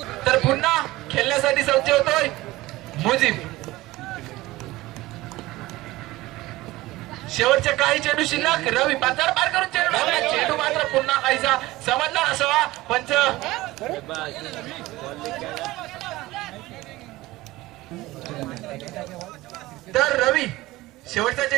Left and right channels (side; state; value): left; quieter; 18.6 dB